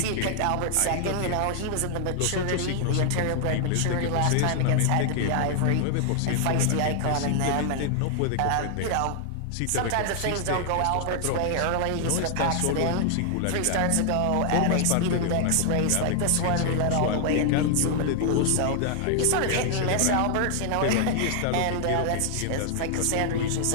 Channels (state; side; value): different; both; correlation 0.00